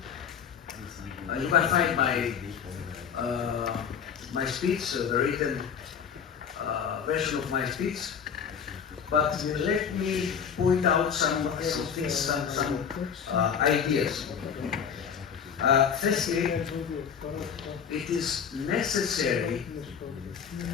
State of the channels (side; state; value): right; quieter; 7.4 dB